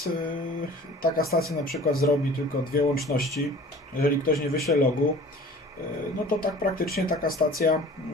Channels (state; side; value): normal; both; correlation 0.45